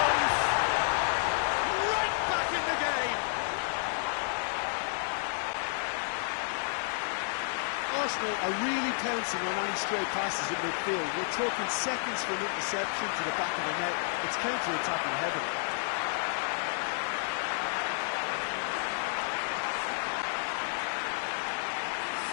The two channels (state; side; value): silent; right; digital silence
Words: Right back in the game! Arsenal are really pouncing on any stray passes in midfield. We're talking seconds from interception to the back of the net. It's counter-attacking heaven.